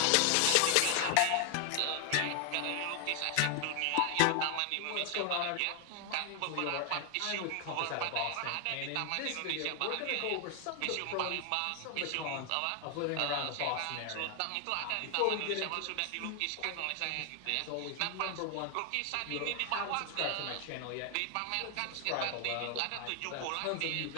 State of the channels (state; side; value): different; both; correlation 0.00